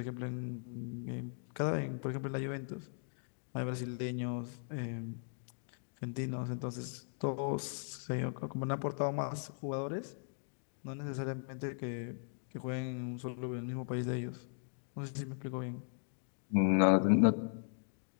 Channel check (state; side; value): silent; right; digital silence